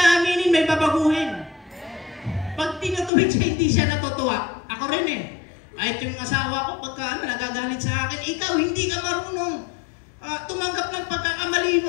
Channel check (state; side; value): drops out; right; at 3.1 s